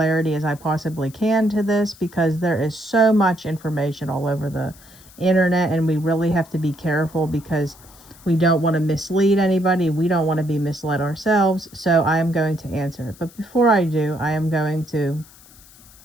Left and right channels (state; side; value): noise; left; hiss, 24 dB below the sound